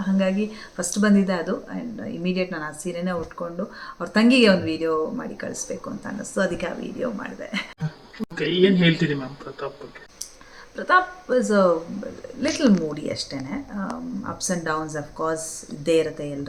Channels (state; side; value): identical; both; correlation 1.00